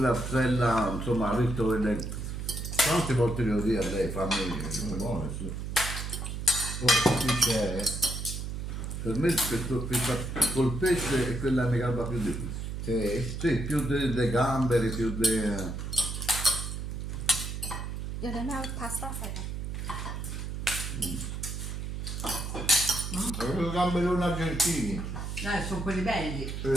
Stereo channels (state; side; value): noise; right; hum, 5 dB below the sound